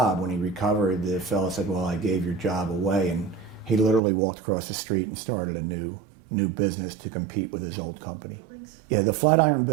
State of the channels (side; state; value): left; drops out; at 4.0 s